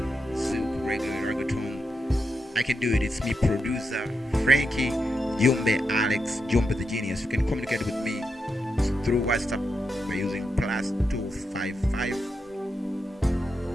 silk, regular, reggaeton, I can do it. It's me, producer Frankie JUMBE, Alex JUMBE the Genius. You can communicate with me through WhatsApp by using +255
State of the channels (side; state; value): both; normal; correlation 0.85